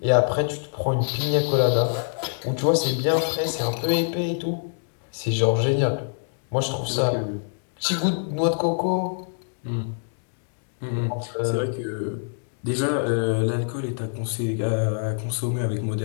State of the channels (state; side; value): silent; right; digital silence